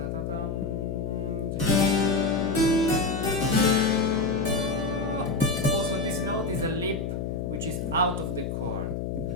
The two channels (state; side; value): noise; left; hum, 3 dB below the sound